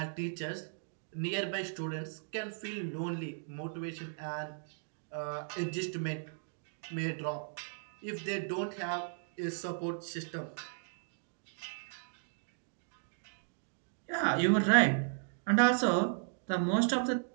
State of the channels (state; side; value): silent; left; digital silence